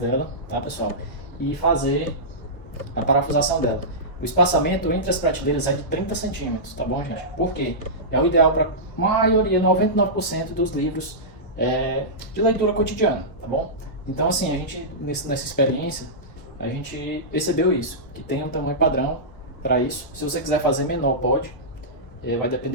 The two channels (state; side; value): late; right; 1.0 ms